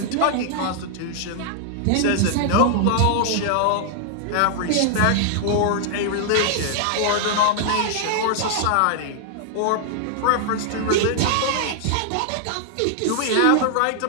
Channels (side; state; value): both; different; correlation -0.01